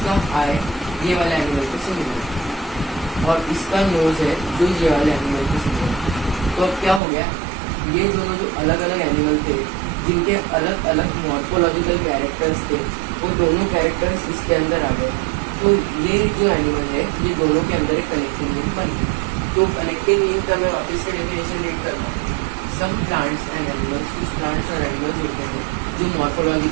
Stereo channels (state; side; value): drops out; left; at 7.0 s